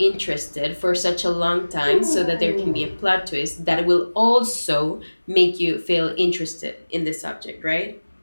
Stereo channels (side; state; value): both; inverted; correlation -1.00